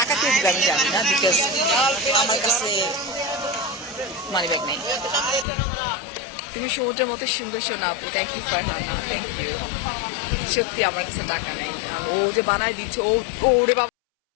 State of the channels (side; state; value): right; drops out; at 5.5 s